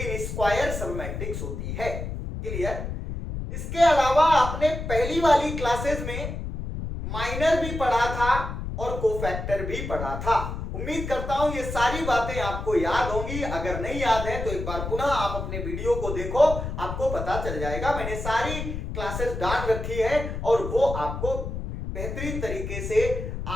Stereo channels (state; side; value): noise; left; rumble, 5 dB below the sound